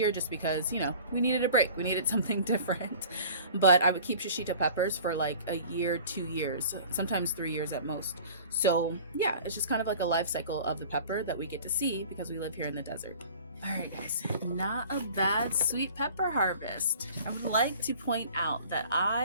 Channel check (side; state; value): both; inverted; correlation -0.45